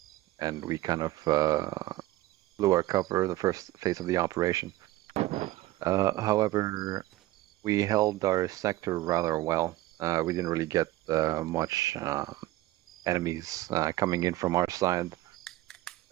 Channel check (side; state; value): left; quieter; 16.7 dB